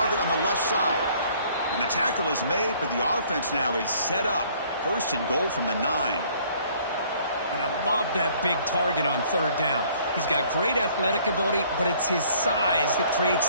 on the left side. And the tackle is made, but the offense now is set up. 1st and goal from the 9. And I love that big target on 3rd down. He's got great athletic ability, but it's his size that creates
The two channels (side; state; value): both; inverted; correlation -0.59